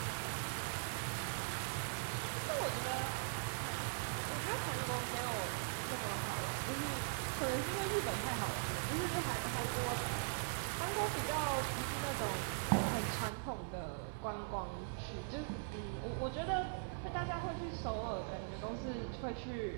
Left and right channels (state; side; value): silent; left; 50 dB below the other